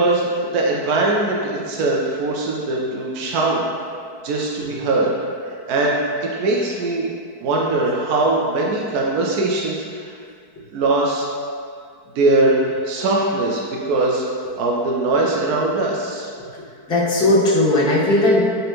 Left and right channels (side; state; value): left; late; 4.6 ms